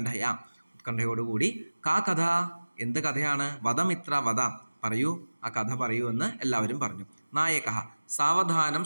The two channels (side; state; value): both; inverted; correlation -1.00